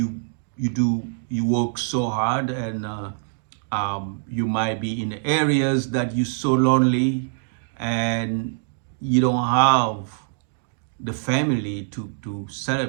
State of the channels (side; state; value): left; silent; digital silence